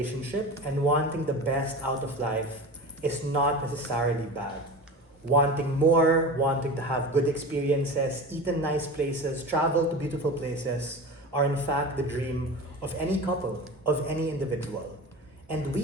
and wanting the best out of life is not necessarily bad. Wanting more, wanting to have good experiences, eat in nice places, travel to beautiful places are in fact the dream of any couple, of any individual. And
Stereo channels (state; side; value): normal; both; correlation 0.31